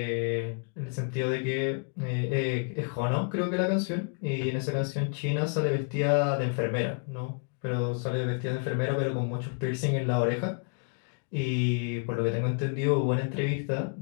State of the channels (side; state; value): right; quieter; 38.1 dB